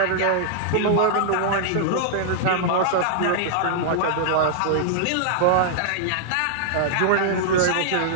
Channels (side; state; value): both; different; correlation -0.01